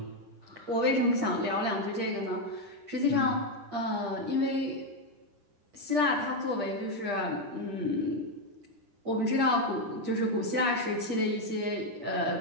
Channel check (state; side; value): late; left; 10 ms